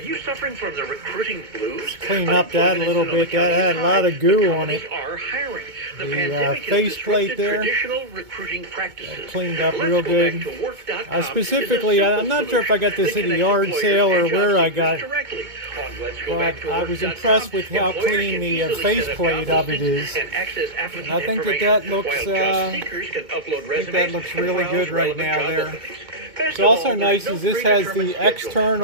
suffering from the recruiting blues? Clean up that a little bit. That had a lot of goo on it. Are hiring. The faceplate there, cleaned up real good. Specifically, I'm not sure if I got this at a yard sale or where I got it, but I was impressed with how clean the faceplate of it is. And I think that looks really good right now there. What's also nice is this has the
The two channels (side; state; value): left; late; 2.2 ms